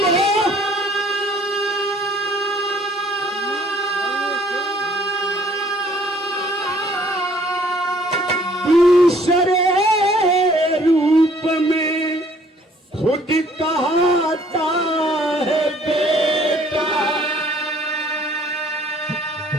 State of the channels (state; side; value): normal; both; correlation 0.59